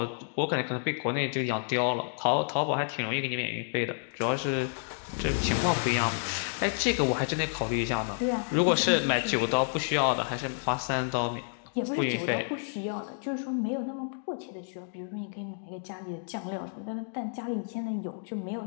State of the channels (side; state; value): right; silent; digital silence